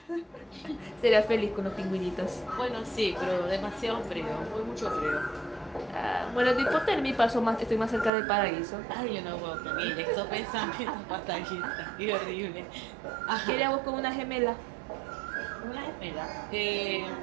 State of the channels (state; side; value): drops out; left; at 8.1 s